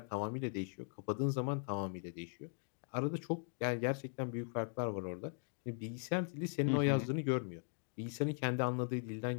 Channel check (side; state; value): right; silent; 51 dB below the other